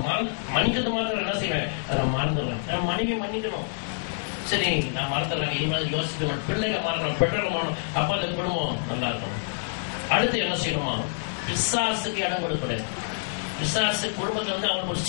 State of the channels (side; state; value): right; silent; 60 dB below the other